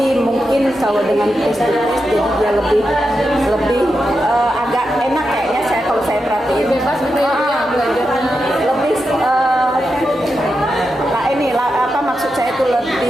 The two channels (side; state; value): both; normal; correlation 0.88